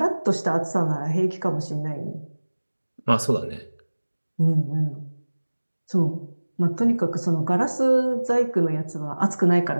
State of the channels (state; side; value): inverted; both; correlation -1.00